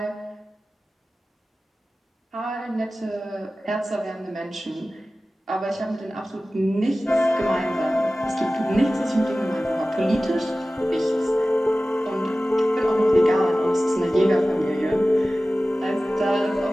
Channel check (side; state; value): both; normal; correlation 0.96